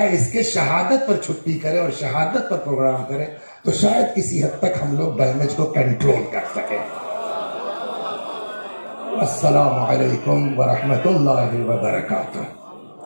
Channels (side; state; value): both; inverted; correlation -1.00